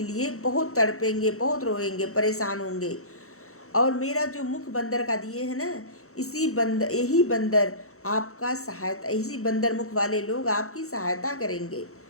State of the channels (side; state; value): right; late; 0.64 ms